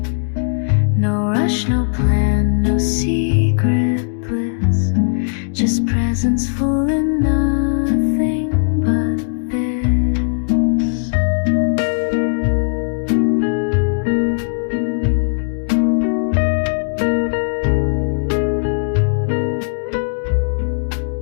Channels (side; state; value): right; silent; digital silence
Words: No rush, no plan, no secret bliss, just presence full enough